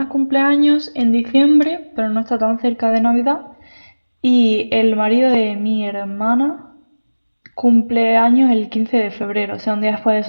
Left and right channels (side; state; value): both; inverted; correlation -1.00